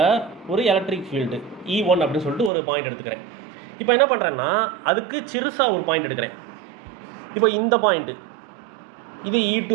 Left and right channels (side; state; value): left; drops out; at 2.5 s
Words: ஒரு எலக்ட்ரிக் ஃபீல்டு E1 அப்படின்னு சொல்லிட்டு ஒரு பாயிண்ட் எடுத்துக்கிறேன். இப்போ என்ன பண்ணுறேன்னா அதுக்கு சிறுசாக ஒரு பாயிண்ட் எடுக்கிறேன். இப்போ இந்த பாயிண்ட்டு இது